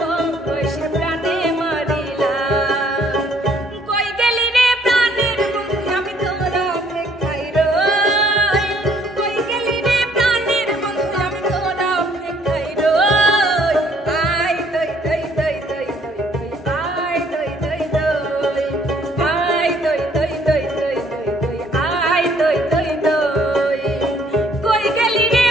বয়সে প্রাণে মারিলা কই গেলি রে প্রাণের বন্ধু আমি তোর অপেক্ষায় রই কই গেলি রে প্রাণের বন্ধু আমি তোর অপেক্ষায় রই আই দই দই দই দই দই আই দই দই দই আই দই দই দই দই দই আই দই দই দই কই গেলি রে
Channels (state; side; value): normal; both; correlation 0.62